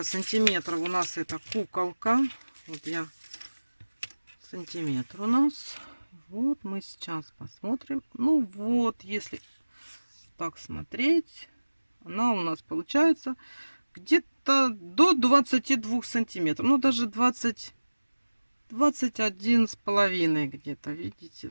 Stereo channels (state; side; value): inverted; both; correlation -1.00